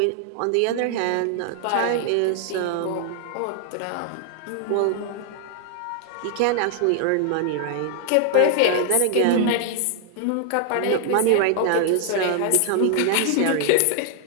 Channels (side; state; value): both; different; correlation 0.00